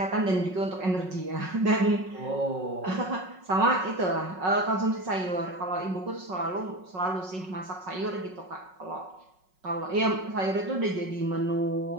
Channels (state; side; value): late; left; 5.4 ms